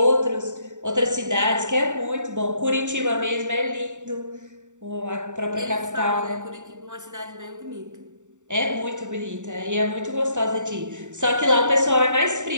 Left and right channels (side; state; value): left; late; 0.85 ms